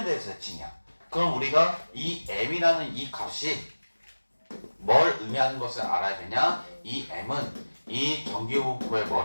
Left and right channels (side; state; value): both; inverted; correlation -1.00